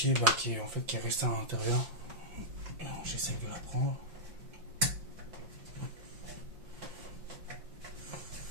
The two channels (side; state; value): left; late; 5.7 ms